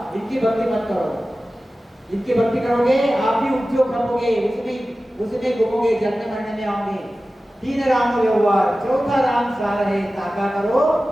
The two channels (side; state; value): both; normal; correlation 0.95